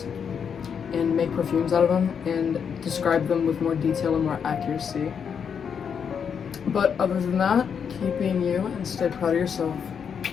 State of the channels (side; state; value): right; quieter; 7.1 dB